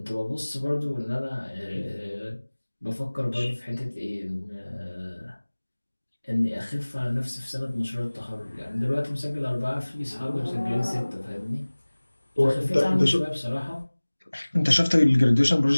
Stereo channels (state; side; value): inverted; both; correlation -1.00